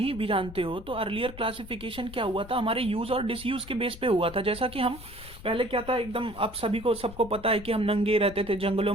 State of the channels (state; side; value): noise; left; rumble, 16 dB below the sound